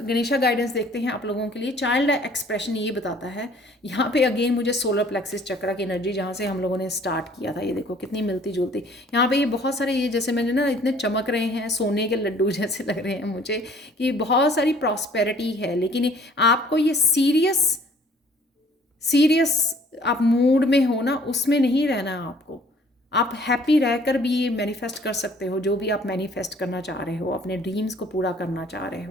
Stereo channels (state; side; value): normal; both; correlation 0.56